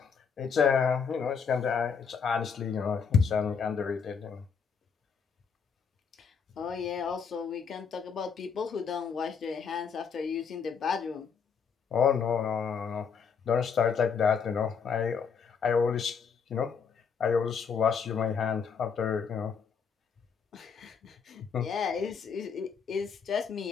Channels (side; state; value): right; quieter; 6.3 dB